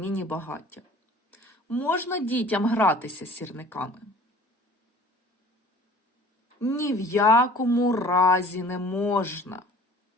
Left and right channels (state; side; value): normal; both; correlation 0.48